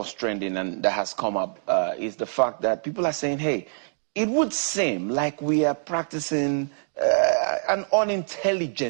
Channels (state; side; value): silent; left; digital silence